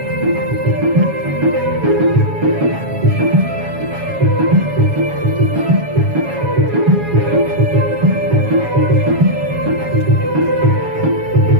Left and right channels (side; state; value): left; late; 7.2 ms